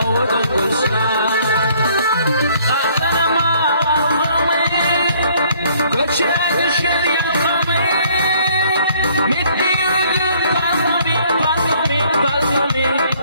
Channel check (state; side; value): inverted; both; correlation -0.61